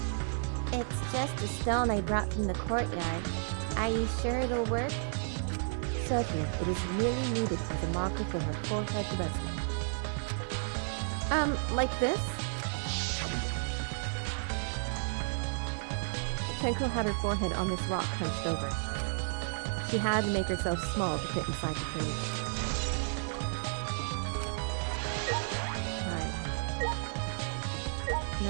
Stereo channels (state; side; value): silent; left; 56 dB below the other